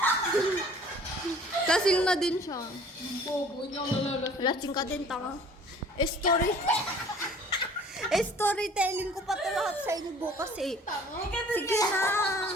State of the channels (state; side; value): normal; both; correlation 0.51